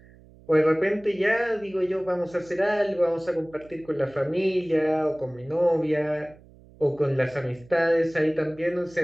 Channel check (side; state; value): right; noise; hum, 24 dB below the sound